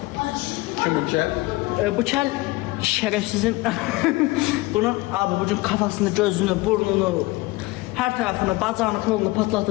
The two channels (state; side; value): quieter; right; 21.6 dB